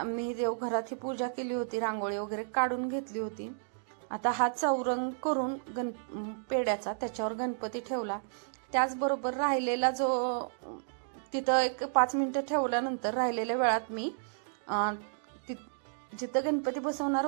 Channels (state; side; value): silent; left; digital silence